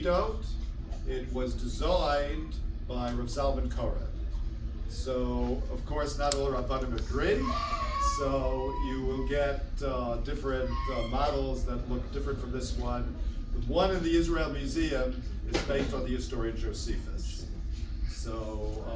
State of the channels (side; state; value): both; identical; correlation 1.00